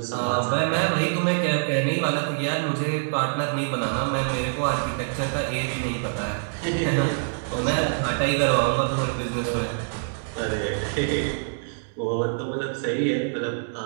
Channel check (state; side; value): silent; left; digital silence